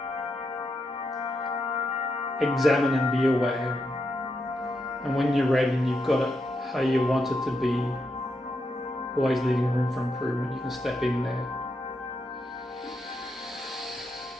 examine and be aware. And when you're ready and you've got it how you want it to be, always leaving room for improvement, you can step in there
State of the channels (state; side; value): normal; both; correlation 0.83